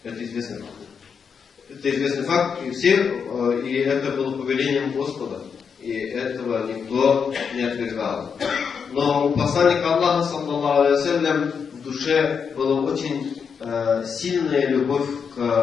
Это известный факт. Это известный факт, и это было повелением Господа. И этого никто не отвергал. Но у посланника Аллаха, саллаллаху алейхи ва саллям, в душе была очень сильная любовь к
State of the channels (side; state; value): right; quieter; 6.4 dB